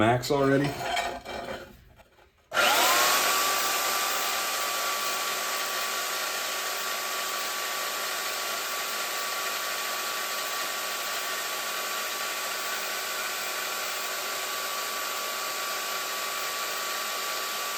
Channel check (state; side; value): identical; both; correlation 1.00